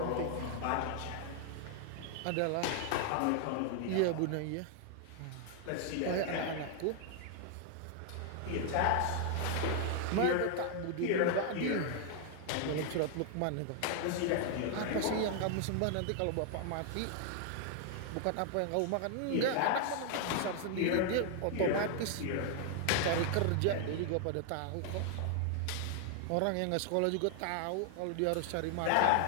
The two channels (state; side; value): different; both; correlation 0.00